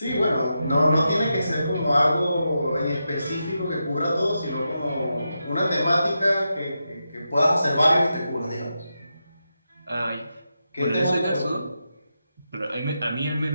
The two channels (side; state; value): both; inverted; correlation -0.87